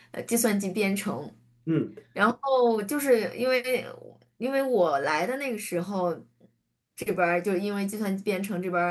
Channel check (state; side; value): identical; both; correlation 1.00